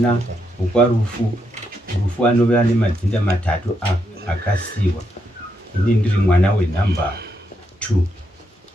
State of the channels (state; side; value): normal; both; correlation 0.80